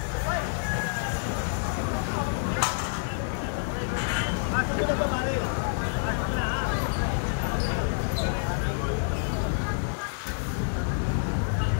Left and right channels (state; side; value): silent; right; digital silence